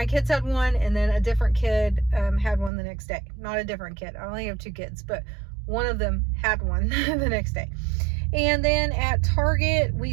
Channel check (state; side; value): drops out; left; at 2.7 s